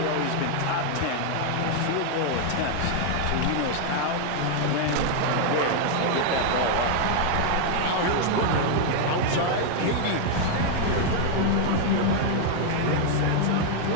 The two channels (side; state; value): both; different; correlation 0.00